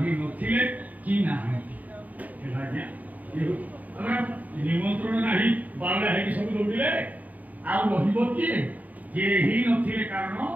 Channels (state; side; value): late; left; 0.076 ms